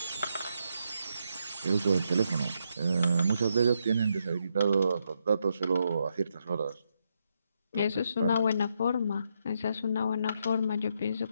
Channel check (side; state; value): both; inverted; correlation -0.80